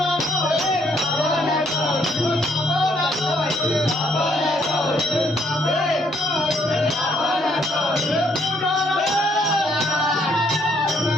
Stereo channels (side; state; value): both; normal; correlation 0.69